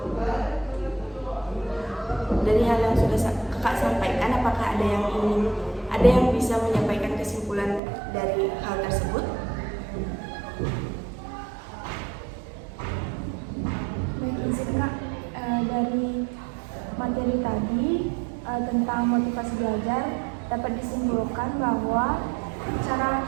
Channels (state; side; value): drops out; left; at 7.8 s